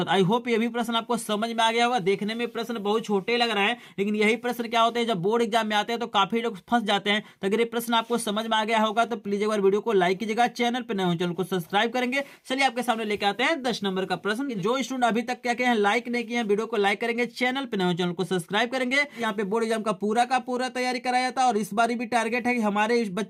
आई होप ये भी प्रश्न आपको समझ में आ गया होगा। देखने में प्रश्न बहुत छोटे लग रहे हैं, लेकिन यही प्रश्न क्या होते हैं जब बोर्ड एग्जाम में आते हैं तो काफी लोग फंस जाते हैं। तो अगर ये प्रश्न आपको समझ में आ गया होगा तो प्लीज एक बार वीडियो को लाइक कीजिएगा, चैनल पर नए हो चैनल को सब्सक्राइब करेंगे। चलिए आपके सामने लेके आते हैं 10 नंबर का प्रश्न। जो स्टूडेंट अभी तक क्या किए हैं, लाइक नहीं किए हैं, वीडियो को लाइक करेंगे, चैनल पे नए हो चैनल को सब्सक्राइब करेंगे। यहाँ पे बोर्ड एग्जाम का पूरा तैयारी कराया था, और इस बार भी टारगेट है कि हमारे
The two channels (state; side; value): identical; both; correlation 1.00